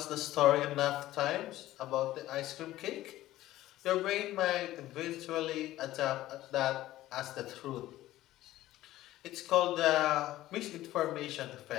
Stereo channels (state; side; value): quieter; right; 15.2 dB